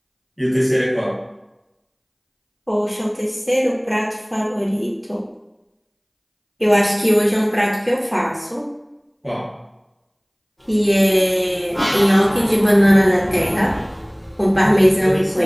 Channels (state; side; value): identical; both; correlation 1.00